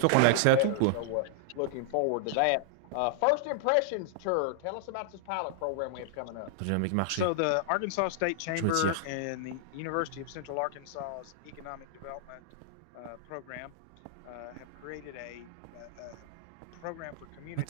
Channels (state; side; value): different; both; correlation -0.01